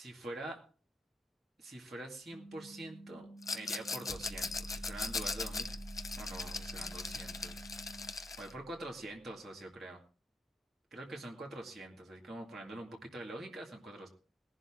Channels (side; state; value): both; normal; correlation 0.75